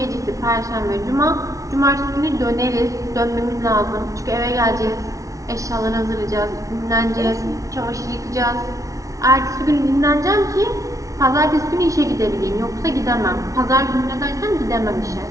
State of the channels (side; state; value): left; late; 0.16 ms